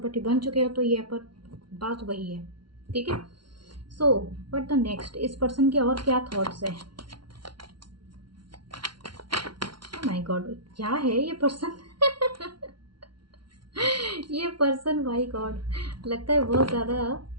बन चुके हो, तो ये पर बात वही है, ठीक है। सो बट द नेक्स्ट, इस पर्सन के और क्या थॉट्स है। माय गॉड, क्या है ये पर्सन ये पर्सन, माय गॉड, लगता है बहुत ज़्यादा।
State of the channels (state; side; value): late; left; 0.73 ms